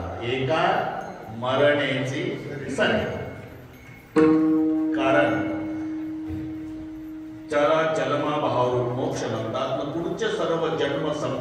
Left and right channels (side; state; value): both; identical; correlation 1.00